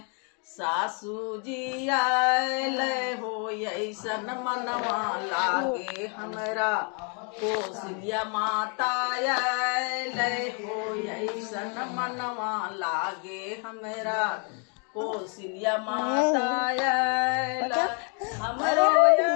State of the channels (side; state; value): right; quieter; 38.2 dB